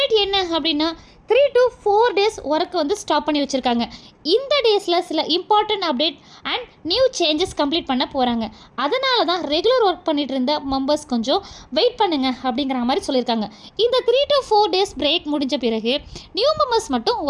என்ன அப்படின்னா 3 to 4 days ஒர்க் வந்து ஸ்டாப் பண்ணி வச்சுருக்காங்க. இந்த டேஸில் சில important update and new changes complete பண்ண போகிறாங்க. அதனால தான் ரெகுலர் ஒர்க் பண்ணிட்டு இருந்த மெம்பர்ஸ் கொஞ்சம் வெயிட் பண்ணுங்க அப்படிங்கிற மாதிரி சொல்லியிருக்காங்க. இந்த 3 to 4 days பிரேக் முடிஞ்ச பிறகு நியூ மெம்பர்ஸ் மட்டும்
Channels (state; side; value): identical; both; correlation 1.00